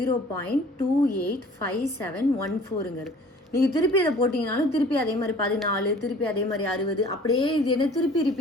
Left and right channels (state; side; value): normal; both; correlation 0.50